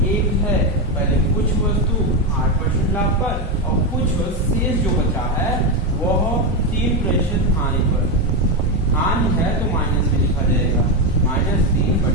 एक है। पहले कुछ वस्तु 8% लाभ पर और कुछ शेष जो बचा है वह 3% हानि पर। हानि है तो माइनस में लिखा जाएगा,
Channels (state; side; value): normal; both; correlation 0.10